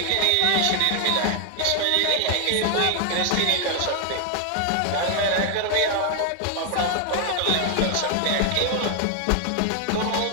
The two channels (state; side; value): different; both; correlation 0.00